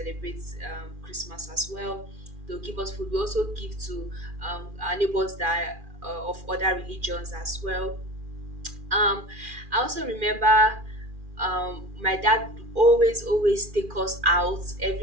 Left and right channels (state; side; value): late; left; 2.4 ms